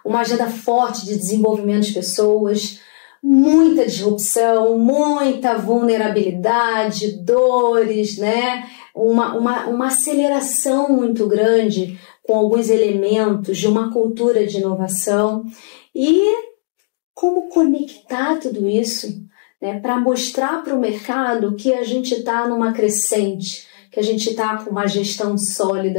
uma agenda forte de desenvolvimento de pessoas, muita disrupção, muita vulnerabilidade, dores, né? Uma aceleração muito grande com alguns elementos de uma cultura de inovação. E como conectar tudo isso, né, para mostrar para o mercado que a gente está numa crescente, que a gente está com uma gestão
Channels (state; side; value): silent; right; digital silence